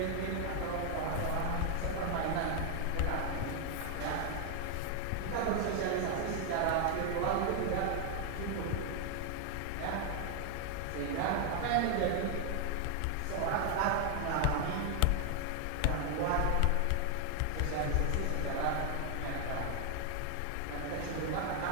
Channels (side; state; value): both; different; correlation 0.00